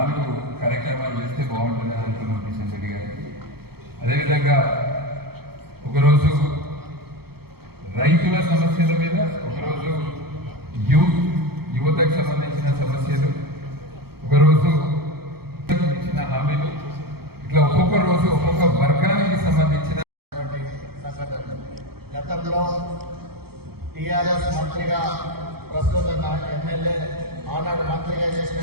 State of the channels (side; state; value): left; late; 0.96 ms